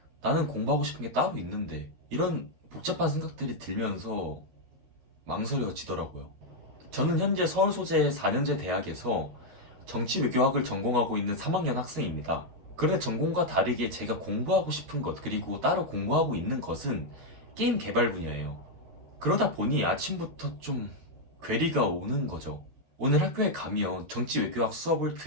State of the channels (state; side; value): late; left; 12 ms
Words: 나는 공부하고 싶은 게 따로 있는데 이런 복잡한 생각들이 들면서 망설여지더라고요. 저는 현재 서울 소재 4년제 대학에서 정치외교학을 전공하고 있는 3학년 학생입니다. 그런데 전공과 다르게 제가 공부하고 싶은 것, 그리고 따로 공부하고 있는 것은 게임 개발 분야예요. 그러다 보니 아침부터 좀 괴리가 오는 거죠. 오늘 학교에 가면 정치외교학 수업을